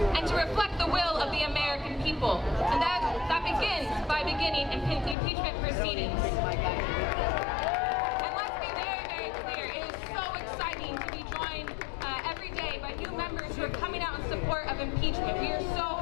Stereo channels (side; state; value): right; drops out; at 5.2 s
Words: and to reflect the will of the American people. And that begins by beginning impeachment proceedings. And let's be very, very clear, it is so exciting to be joined every day by new members who are coming out in support of impeachment. We are